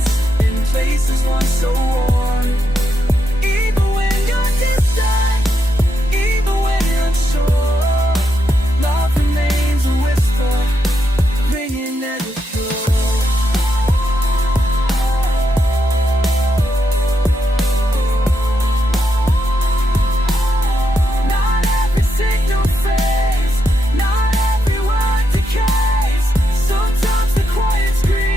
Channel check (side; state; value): both; normal; correlation 0.82